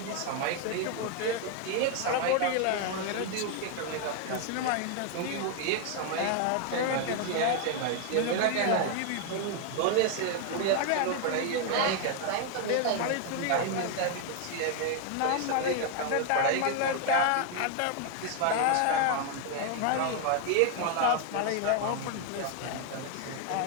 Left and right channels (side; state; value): both; different; correlation 0.01